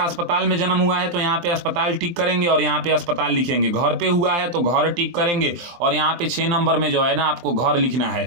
अस्पताल में जन्म हुआ है तो यहाँ पे अस्पताल टिक करेंगे और यहाँ पे अस्पताल लिखेंगे, घर पे हुआ है तो घर टिक करेंगे और यहाँ पे 6 नंबर में जो है ना आपको घर लिखना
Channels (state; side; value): late; left; 23 ms